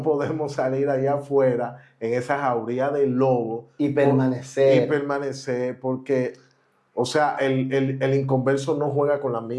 podemos salir allá afuera en esa jauría del lobo Y permanecer. Y permanecer, porque, o sea, el inconverso no juega con la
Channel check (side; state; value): both; identical; correlation 1.00